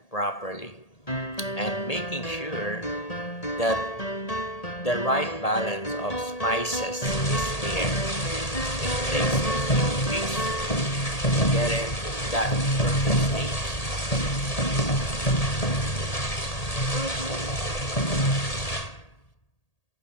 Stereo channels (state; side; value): late; right; 1.8 ms